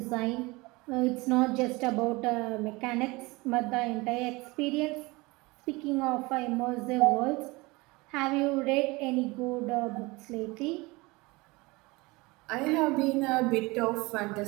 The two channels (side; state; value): left; quieter; 23.6 dB